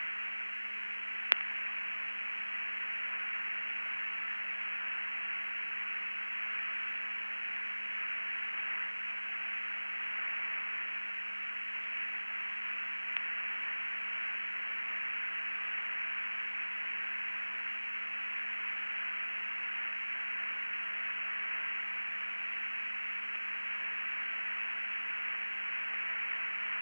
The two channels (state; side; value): inverted; both; correlation -1.00